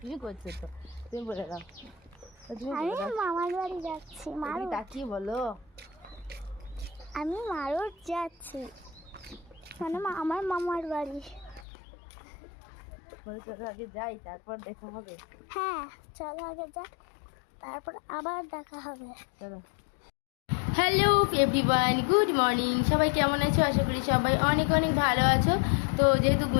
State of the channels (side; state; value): right; drops out; at 11.7 s